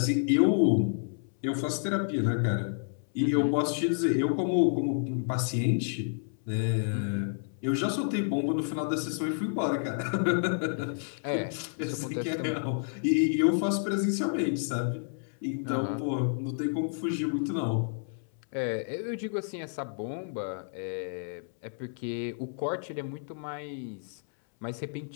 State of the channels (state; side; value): silent; right; 58 dB below the other